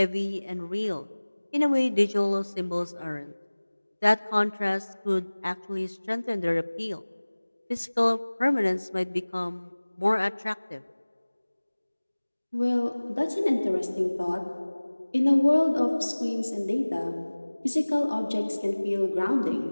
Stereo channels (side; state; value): both; inverted; correlation -1.00